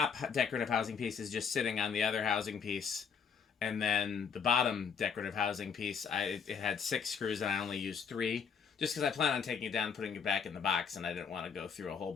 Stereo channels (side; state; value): right; quieter; 6.6 dB